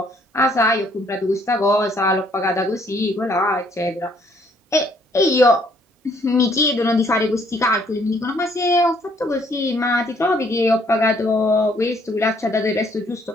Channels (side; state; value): both; normal; correlation 0.65